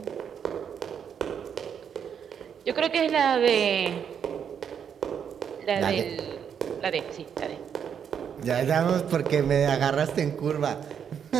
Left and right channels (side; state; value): left; quieter; 7.8 dB